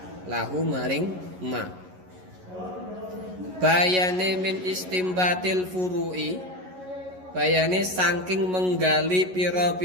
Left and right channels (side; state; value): left; late; 11 ms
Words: bayane min istimbatil furu'i bayane saking menggali